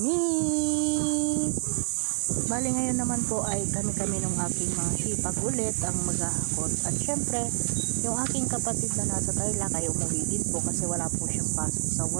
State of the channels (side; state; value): left; silent; 60 dB below the other